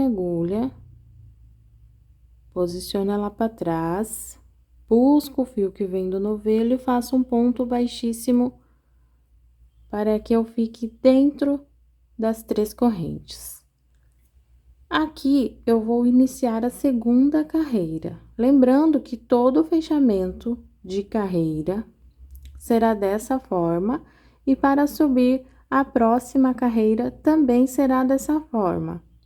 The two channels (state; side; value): identical; both; correlation 1.00